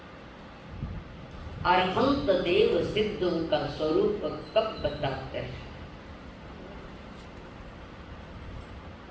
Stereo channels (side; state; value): both; identical; correlation 1.00